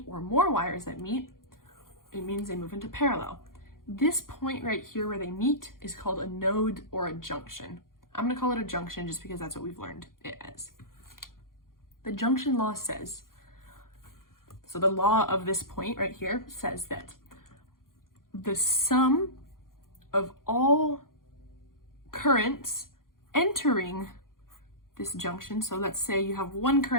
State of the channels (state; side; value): late; right; 0.91 ms